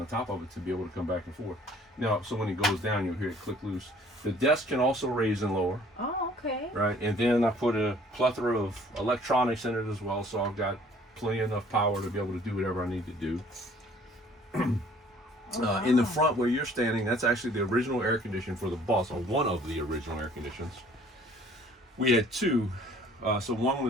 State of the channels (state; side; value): normal; both; correlation 0.56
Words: top of it to be able to come back and forth. Now, so when it goes down, you'll hear it click loose. The desk can also raise and lower. Oh, okay. Right, and then I put a plethora of electronics in it as well, so I've got plenty enough power to be able to do whatever I need to do. In the front where you're standing, that's actually the original air conditioner for the bus, or one of the original air conditioners. We had 2, so